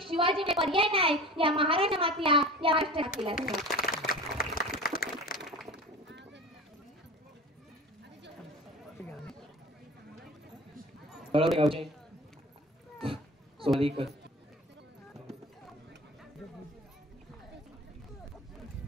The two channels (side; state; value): both; normal; correlation 0.37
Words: शिवाजी पर्याय नाही या महाराजा मातीला, या राष्ट्र मातीला.